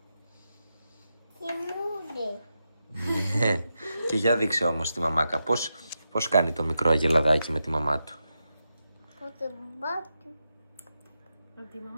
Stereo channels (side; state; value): both; inverted; correlation -0.88